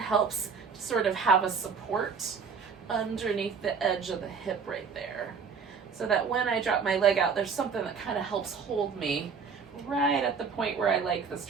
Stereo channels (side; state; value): left; quieter; 5.8 dB